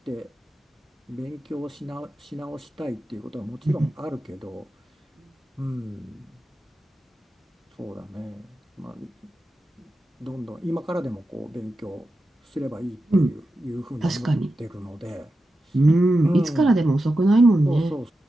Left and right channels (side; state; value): both; normal; correlation 0.90